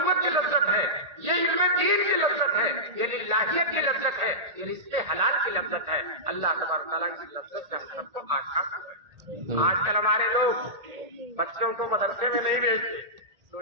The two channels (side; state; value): left; late; 1.8 ms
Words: کی لذت ہے، یہ علم دین کی لذت ہے، یہ للہیت کی لذت ہے، یہ رزق حلال کی لذت ہے۔ اللہ تبارک تعالیٰ کی لذت سے ہم سب کو آشنا کرے۔ آج کل ہمارے لوگ بچوں کو مدرسے میں نہیں بھیجتے،